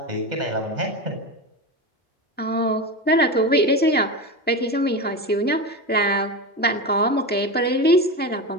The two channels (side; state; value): both; normal; correlation 0.21